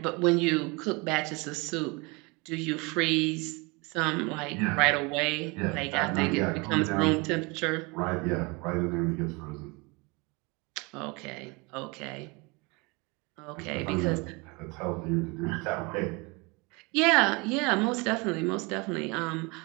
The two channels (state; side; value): quieter; left; 27.7 dB